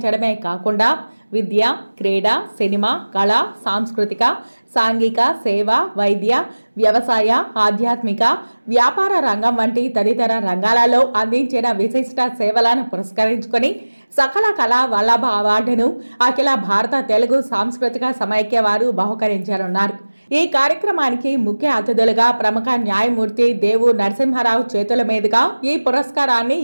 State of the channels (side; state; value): both; inverted; correlation -1.00